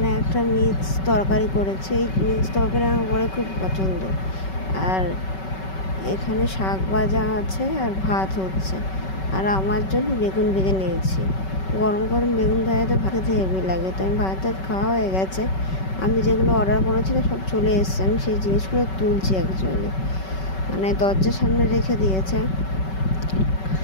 একটা মিক্স তরকারি করেছে। এই মিক্স তরকারি আমার বড় খুব পছন্দ। আর এখানে শাক ভাজা আছে আর ভাত হচ্ছে। আর আমার জন্য বেগুন ভেজে নিয়েছি। গরম গরম বেগুন ভাজাতে ভাত খেতে হেভি লাগে। তো আমি ভাত খাওয়া হয়ে গেছে, আমি যেগুলো অর্ডার করেছিলাম সব চলে এসছে। আমি সেই জিনিসগুলো তুলছি অ্যাকচুয়ালি, মানে দরজার সামনে রেখে দিয়েছে,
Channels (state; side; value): late; right; 5.3 ms